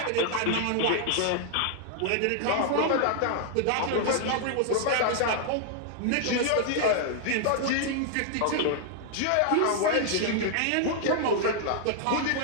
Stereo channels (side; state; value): both; different; correlation -0.01